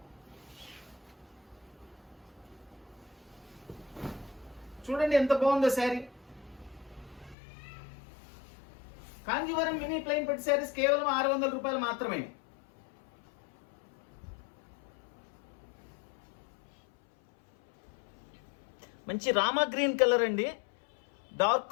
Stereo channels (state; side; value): drops out; right; at 7.4 s